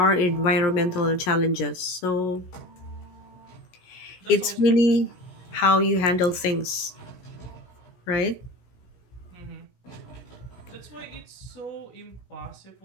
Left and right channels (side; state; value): right; late; 17 ms